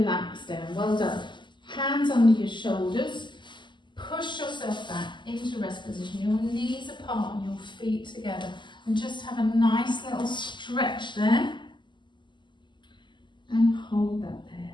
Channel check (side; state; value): right; late; 0.22 ms